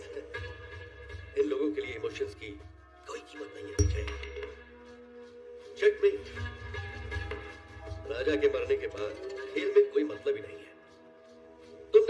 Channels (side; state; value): both; identical; correlation 1.00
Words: इन लोगों के लिए इमोशंस की कोई कीमत नहीं है विजय। चेकमेट। राजा के मरने के बाद खेल में कोई मतलब ही नहीं है।